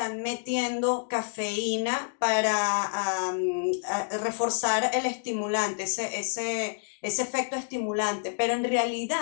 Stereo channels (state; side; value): silent; right; digital silence